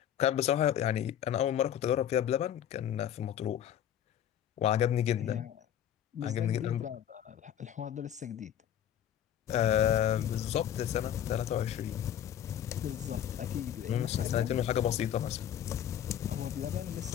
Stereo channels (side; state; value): right; quieter; 10.3 dB